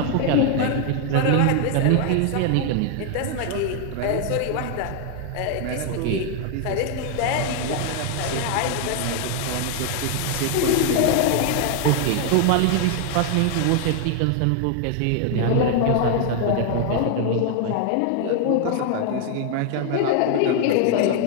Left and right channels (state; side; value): different; both; correlation 0.00